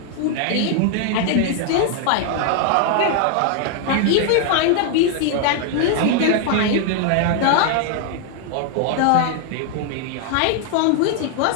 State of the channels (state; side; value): different; both; correlation 0.00